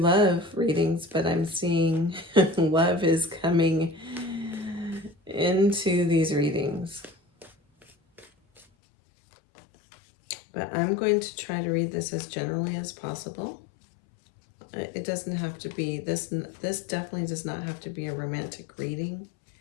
readings, but I'm seeing love is coming into these readings. But I'm going to try to read this as generally as possible. It doesn't have to be, this definitely does not have to be a romantic reading.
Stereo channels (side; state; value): right; drops out; at 8.7 s